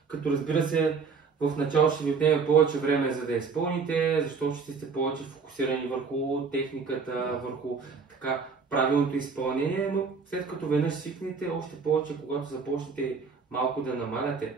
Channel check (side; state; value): left; quieter; 5.2 dB